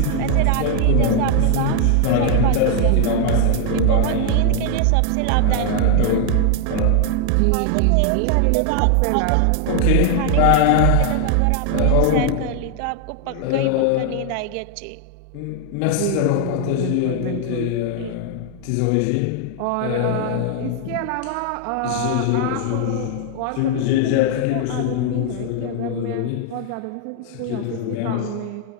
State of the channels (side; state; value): both; different; correlation 0.00